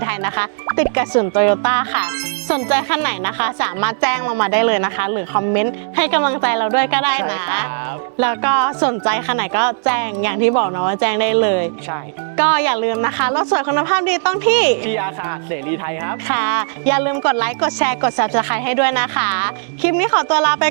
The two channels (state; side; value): silent; left; digital silence